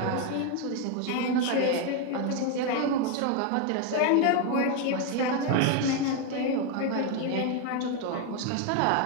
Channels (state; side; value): different; both; correlation 0.01